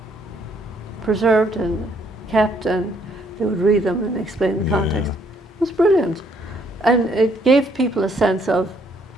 preserved and kept, and they would read them and explain the context. It was brilliant. And it gave people a sense of,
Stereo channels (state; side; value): normal; both; correlation 0.68